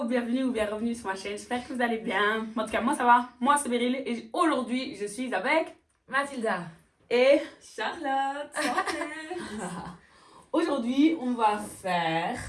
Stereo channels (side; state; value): both; identical; correlation 1.00